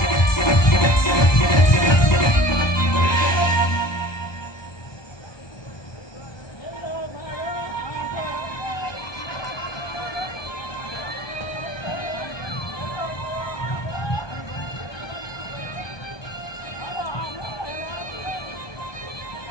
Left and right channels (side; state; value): right; late; 1.2 ms